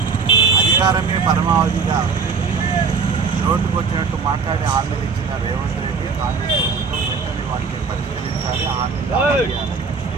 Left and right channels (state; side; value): quieter; left; 5.1 dB